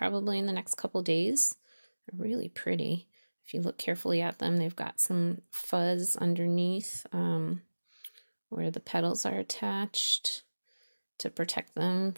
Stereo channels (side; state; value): both; inverted; correlation -1.00